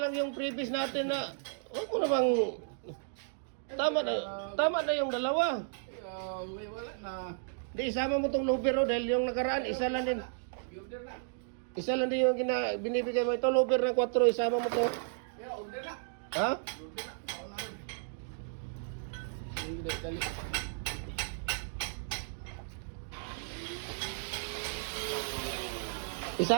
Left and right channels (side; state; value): left; silent; digital silence